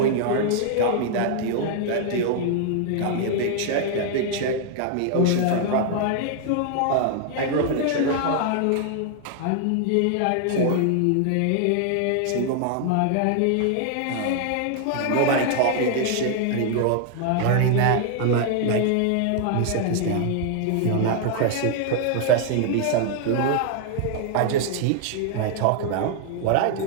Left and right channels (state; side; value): different; both; correlation 0.00